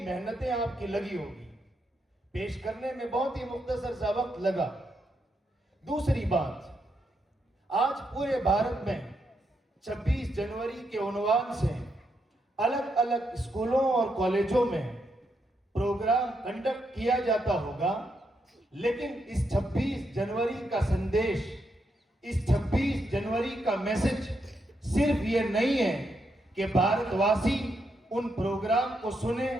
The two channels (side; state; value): both; normal; correlation 0.81